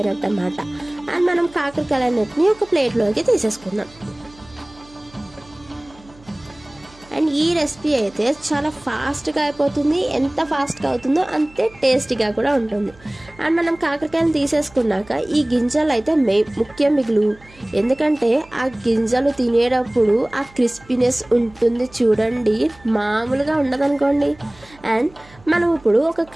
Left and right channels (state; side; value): noise; right; hum, 25 dB below the sound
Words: అన్నమాట. అండ్ మనం కాకరకాయలన్నిటిని ఒక ప్లేట్లోకి తీసేసుకుందాం. అండ్ ఈ రెసిపీ అయితే చాలా ఫాస్ట్గా అయిపోతుంది, ఎంత ఫాస్ట్గా అవుతుందో అంతే టేస్టీగా కూడా ఉంటుంది. అండ్ మనం కాకరకాయలు తీసేసుకున్నాక ఈ గింజలు అయితే ముఖ్యం మిగులు, ఎందుకంటే ఆ గింజలు తినేటప్పుడు ఆ క్రిస్పీనెస్ ఉంటుంది చూడండి, మామూలుగా ఉండదనుకోండి. అండ్ మనం ఇప్పుడు ఒక